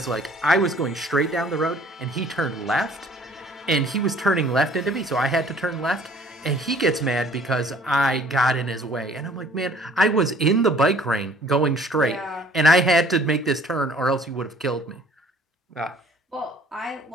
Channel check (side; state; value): both; normal; correlation 0.54